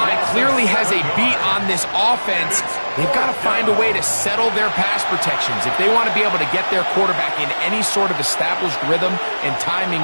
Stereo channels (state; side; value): inverted; both; correlation -1.00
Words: clearly has a beat on this offense. They've got to find a way to settle their pass protections. If they want to be able to get their quarterback in any sort of established rhythm and timing